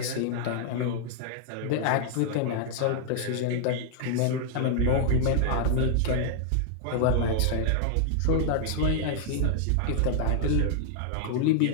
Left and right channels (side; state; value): both; different; correlation 0.00